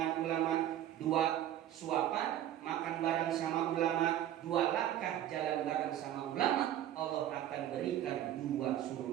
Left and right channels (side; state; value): left; quieter; 11.9 dB